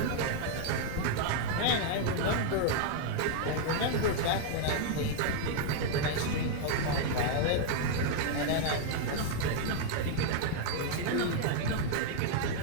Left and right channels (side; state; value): both; different; correlation 0.00